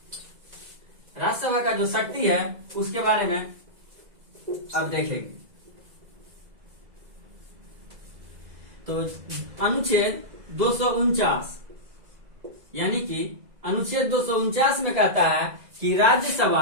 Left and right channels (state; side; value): late; left; 2.0 ms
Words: राज्यसभा का जो शक्ति है उसके बारे में अब देखेंगे। तो अनुच्छेद 249 यानी कि अनुच्छेद 249 में कहता है कि